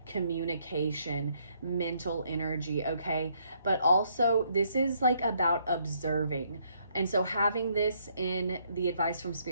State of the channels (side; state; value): both; inverted; correlation -0.70